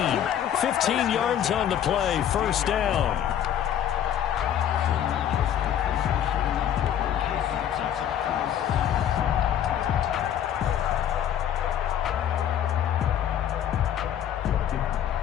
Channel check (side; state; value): right; quieter; 10.0 dB